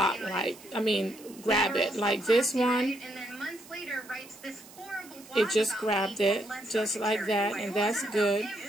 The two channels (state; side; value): noise; right; hiss, 21 dB below the sound